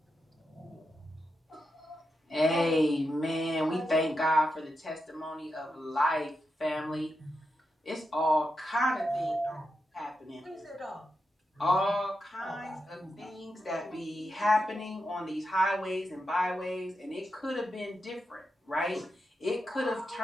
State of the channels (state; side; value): normal; both; correlation 0.87